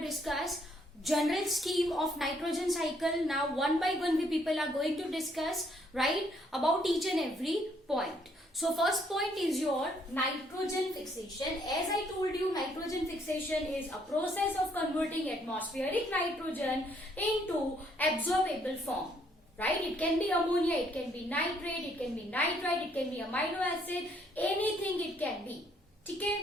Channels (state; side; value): normal; both; correlation 0.68